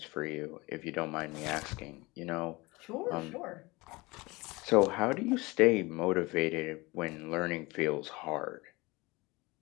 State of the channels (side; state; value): right; quieter; 23.4 dB